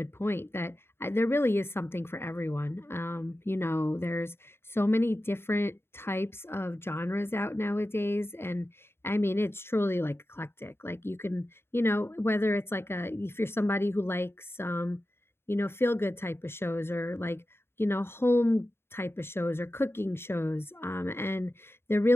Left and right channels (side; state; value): right; late; 0.11 ms